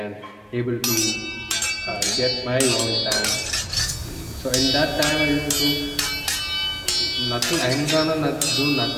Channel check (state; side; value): identical; both; correlation 1.00